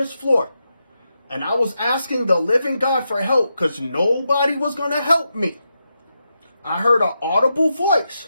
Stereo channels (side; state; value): both; inverted; correlation -0.86